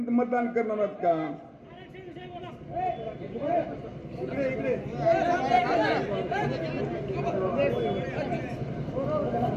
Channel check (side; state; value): both; identical; correlation 1.00